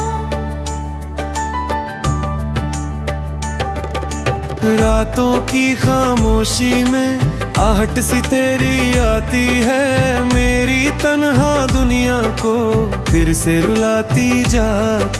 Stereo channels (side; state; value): both; identical; correlation 1.00